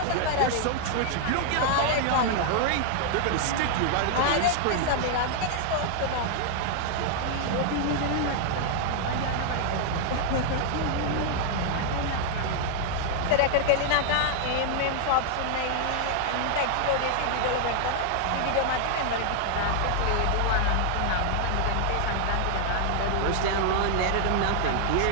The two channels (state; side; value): different; both; correlation 0.00